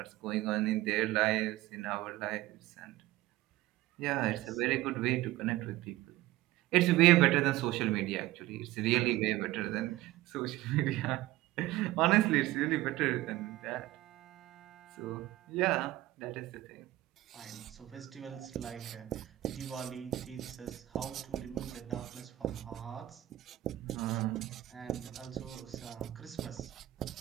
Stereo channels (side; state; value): left; quieter; 16.6 dB